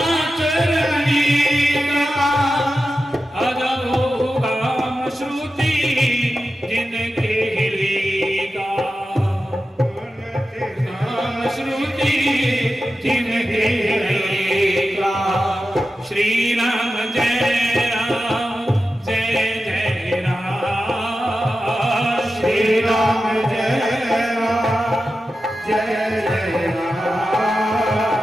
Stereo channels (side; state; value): both; normal; correlation 0.92